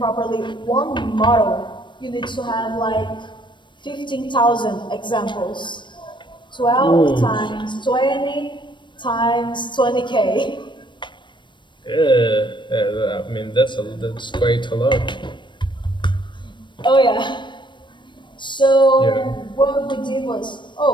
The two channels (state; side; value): late; right; 0.22 ms